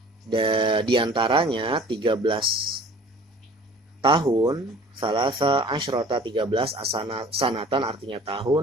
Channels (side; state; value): both; normal; correlation 0.48